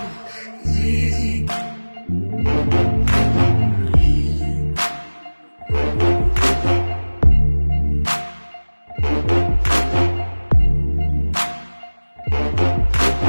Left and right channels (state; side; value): inverted; both; correlation -1.00